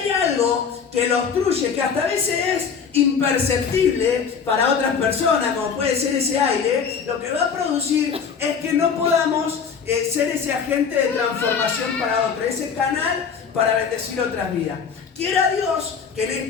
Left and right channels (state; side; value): quieter; right; 6.4 dB